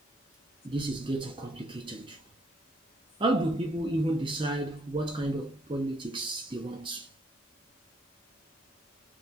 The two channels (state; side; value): normal; both; correlation 0.69